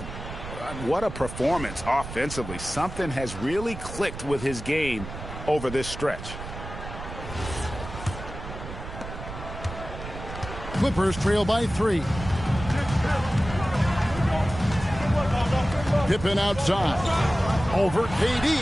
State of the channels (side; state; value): right; noise; rumble, 10 dB below the sound